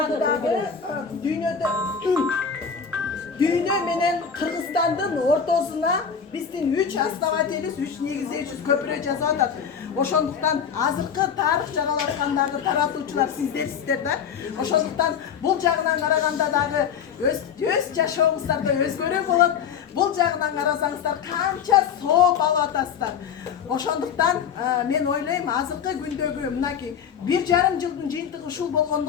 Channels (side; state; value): right; quieter; 7.2 dB